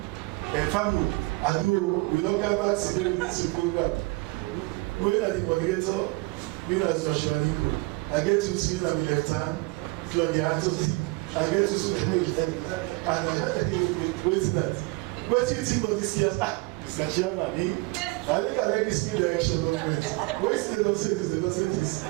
family. I do, we don't come back to the ministry program. Going at the coordinator, me as Joshua Nico. I get to spin on the left hand, Claudia Anthony. I get to swim with them. And wait to that. What do you think about this year's? Mr. Chairman, I think I like this new direction movement. Wait, they don't say this, they don't say this. I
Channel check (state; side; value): quieter; left; 24.9 dB